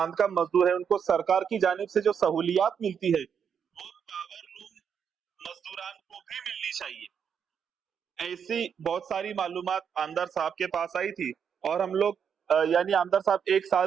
का मजदूर है, उनको सरकार की जानिब से जो सहूलियत मिलती है वो पावर रूम मजदूरान को भी मिलनी चाहिए। ऐसी बहुत सारी मालूमात आमदार साहब के पास आई थी और हम लोग यानी आमदार साहब 1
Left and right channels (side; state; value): left; quieter; 7.4 dB